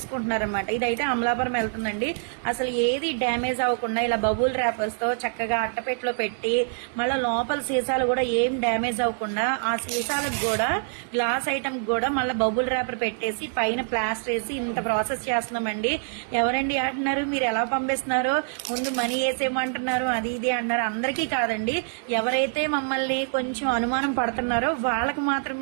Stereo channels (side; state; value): left; silent; digital silence